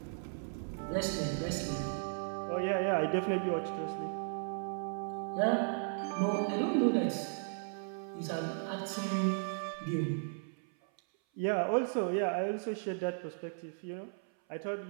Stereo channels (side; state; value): left; silent; 54 dB below the other